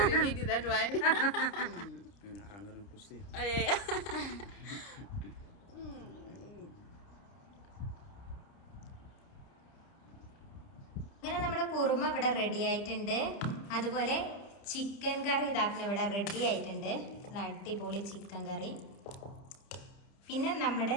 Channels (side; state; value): right; late; 30 ms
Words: we eat that one. Anggaran pusing. ഇങ്ങനെ നമ്മുടെ കുറുമ ഇവിടെ റെഡി ആയിട്ടുണ്ട്. അതുപോലെ ചിക്കൻ കറി ഇതാക്കുന്ന ഇവിടെ റെഡി ആയിട്ടുണ്ട്. നല്ല അടിപൊളി ചിക്കൻ കറി. പിന്നെ നമ്മുടെ